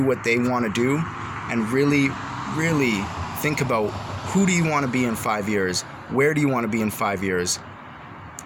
what they want to do and really, really think about who do you want to be in 5 years? Where do you want to be in 5 years?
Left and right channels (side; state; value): both; identical; correlation 1.00